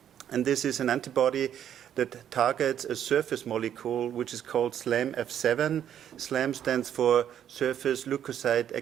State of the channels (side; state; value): left; quieter; 9.9 dB